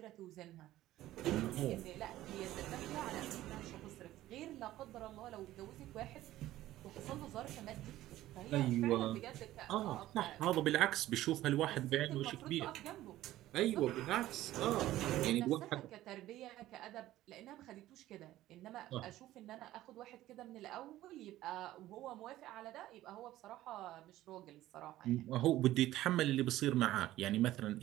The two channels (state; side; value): quieter; left; 14.9 dB